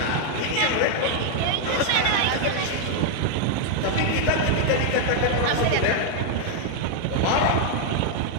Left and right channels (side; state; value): both; different; correlation 0.00